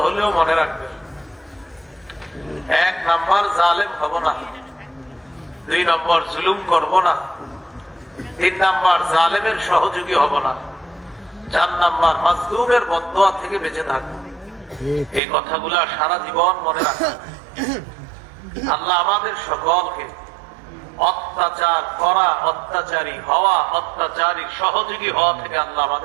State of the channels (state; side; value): drops out; left; at 15.2 s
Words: হলেও মনে রাখবে। 1 নাম্বার, জালেম হব না। 2 নম্বর, জুলুম করব না। 3 নাম্বার, জালেমের সহযোগী হব না। 4 নাম্বার, মাজলুমের বদদুয়া থেকে বেঁচে থাকবো। এই কথাগুলা সারা জীবন মনে রাখবে। আল্লাহ আমাদের সকলকে অত্যাচার করা, অত্যাচারী হওয়া, অত্যাচারীর সহযোগী হওয়া থেকে আল্লাহ